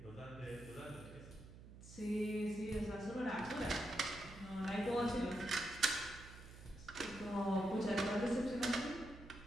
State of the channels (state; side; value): noise; right; hum, 16 dB below the sound